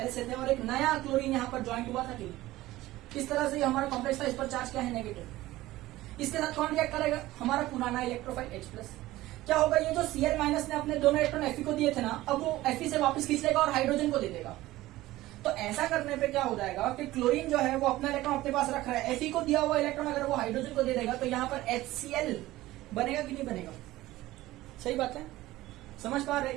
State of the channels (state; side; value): quieter; left; 16.9 dB